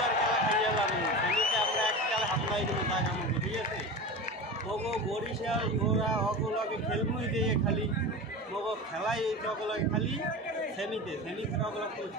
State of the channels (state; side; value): normal; both; correlation 0.28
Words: খেলা খাইয়া যাবো। সেমিতে আমরা এক খেলা হামলাই দেবো তা কামো। ঠিক আছে, মগো বরিশাল ওরা অগলকে খেলবই দিয়ে খালি মগো খেলাই অগলকে খালি সেমিতে অগলক কোনো